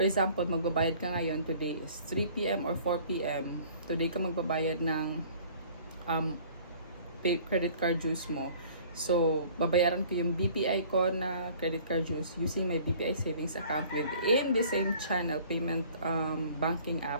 example, magbabayad ka ngayon, today is 3 p.m. or 4 p.m. Today ka magbabayad ng credit card dues mo. So, babayaran ko yung BPI ko na credit card dues using my BPI savings account within the same channel payment banking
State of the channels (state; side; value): inverted; both; correlation -0.52